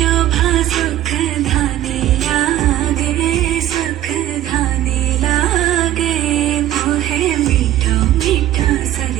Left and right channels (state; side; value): quieter; left; 13.2 dB